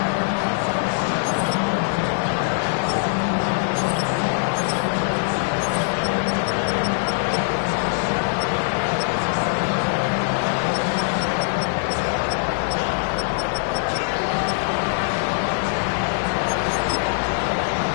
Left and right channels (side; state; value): right; silent; 64 dB below the other